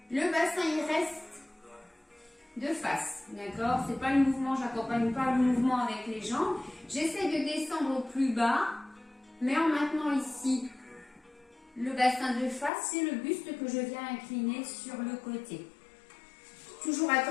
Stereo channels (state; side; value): drops out; right; at 12.7 s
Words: Le bassin, il reste de face, d'accord? C'est pas le mouvement, j'accompagne pas le mouvement avec les jambes. J'essaie de descendre au plus bas, mais en maintenant ici le bassin de face, c'est le buste que je viens incliner sur le côté. Toujours